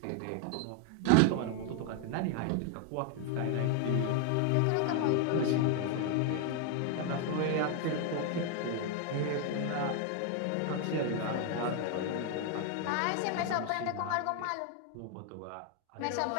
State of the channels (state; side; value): different; both; correlation 0.00